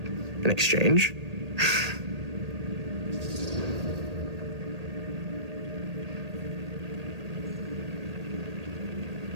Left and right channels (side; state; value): left; late; 1.8 ms